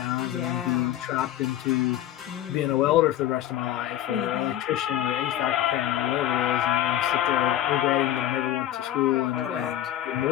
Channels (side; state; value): right; quieter; 12.4 dB